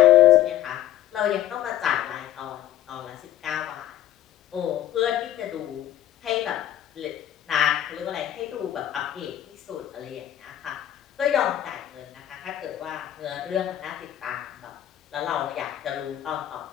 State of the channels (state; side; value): quieter; right; 12.4 dB